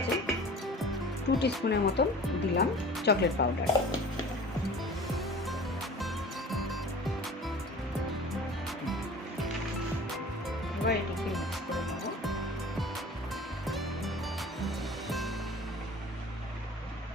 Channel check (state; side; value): normal; both; correlation 0.42